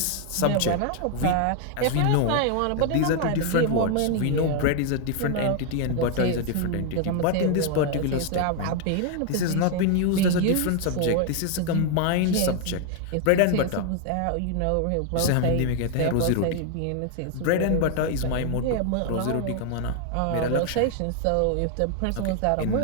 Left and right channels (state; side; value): different; both; correlation 0.00